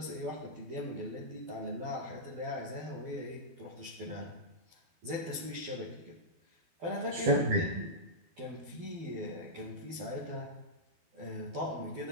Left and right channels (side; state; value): left; late; 12 ms